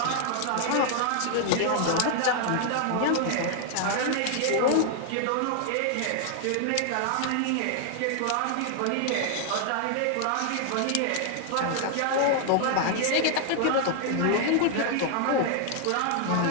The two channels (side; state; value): both; different; correlation 0.00